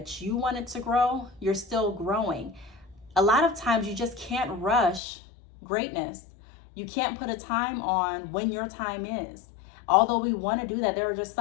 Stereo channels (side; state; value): right; drops out; at 5.0 s